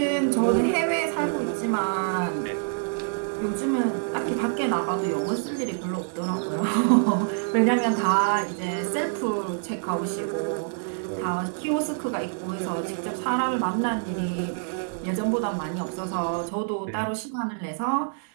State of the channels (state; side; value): silent; left; 61 dB below the other